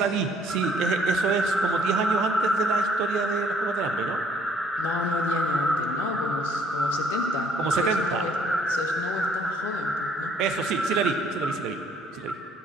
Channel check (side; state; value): both; normal; correlation 0.63